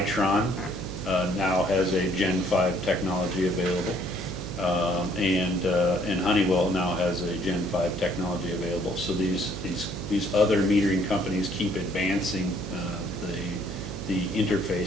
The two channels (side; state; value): right; noise; hum, 8 dB below the sound